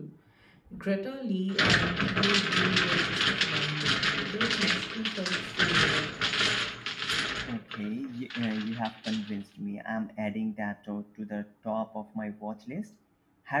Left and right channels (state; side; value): identical; both; correlation 1.00